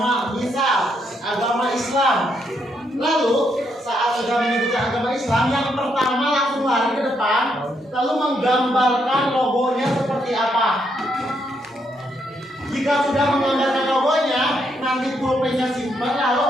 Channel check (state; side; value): normal; both; correlation 0.76